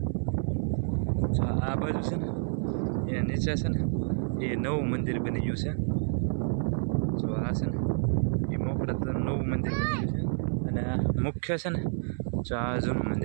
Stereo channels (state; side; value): silent; left; 55 dB below the other